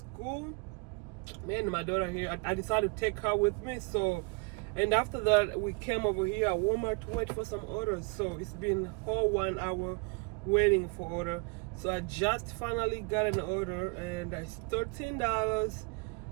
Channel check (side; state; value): left; quieter; 31.2 dB